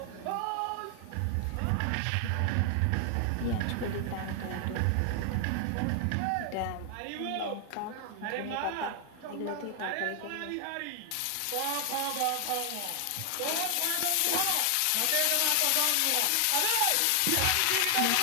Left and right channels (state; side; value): different; both; correlation 0.00